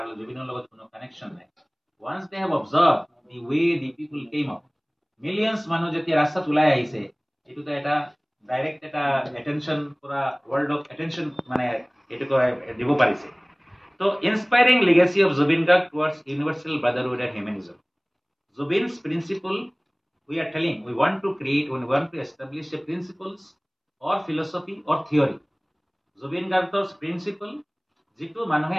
জুবিনৰ লগত কোনো কানেকশ্যন নাই। Once they have observed the way the people came up, millions মানুহ যেতিয়া ৰাস্তাত ওলাই আহিছে, এইটোতো এটা ডাইৰেক্ট এটা এটেনশ্যন, পুৰা ৱৰ্ল্ডক এটেনশ্যন মানে এইটো দিব পাৰিছে। তো inspiring legacy of Zubin Garg towards universal brotherhood and humanism. Zubin's principle, we are telling, we want to establish a principles or philosophy or theory. Zubin Garg's principle, যিটো মানুহে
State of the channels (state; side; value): identical; both; correlation 1.00